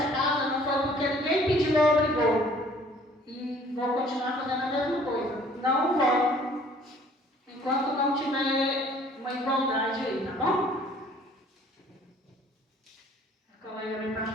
casa não foi porque ninguém pediu ou obrigou. E vou continuar fazendo a mesma coisa. Não voto enquanto não tiver uma igualdade aí, tá bom? A colega me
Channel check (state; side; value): normal; both; correlation 0.56